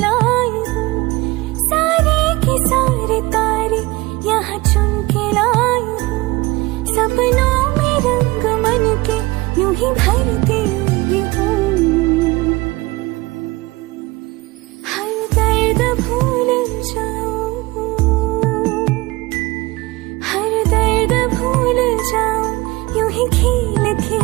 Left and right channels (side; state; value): left; quieter; 21.6 dB